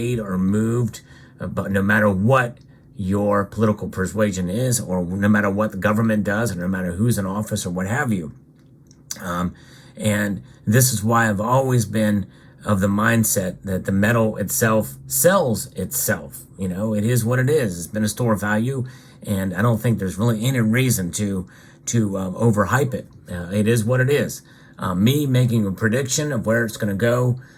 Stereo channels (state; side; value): identical; both; correlation 1.00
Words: or moved, but no matter what your political persuasion is, or no matter what the government does, or no matter who's in office or what have you. And this is why I've always been of the mindset that the metal itself sells itself. You know, it is what it is. It's been a store of value, and I don't think there's really any reason to overhype it. It is what it is. Me making a prediction of where it's going to go